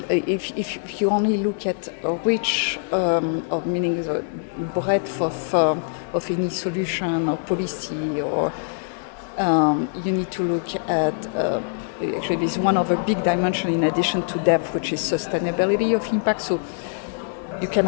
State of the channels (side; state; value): right; silent; 63 dB below the other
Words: if you only look at a reach of meaning the breadth of any solution or policy, or you need to look at actually there's one other big dimension in addition to depth, which is sustainability of impact. So you can